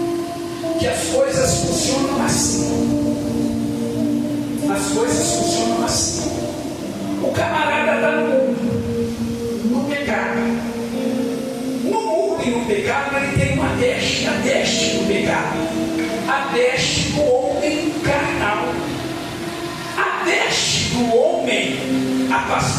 que as coisas funcionam assim. As coisas funcionam assim. O camarada está no pecado. No mundo e no pecado ele tem uma deste, a deste do pecado, a deste do homem carnal, a deste do homem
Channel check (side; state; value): both; identical; correlation 1.00